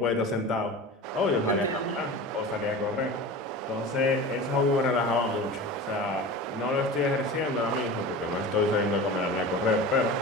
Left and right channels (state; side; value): normal; both; correlation 0.33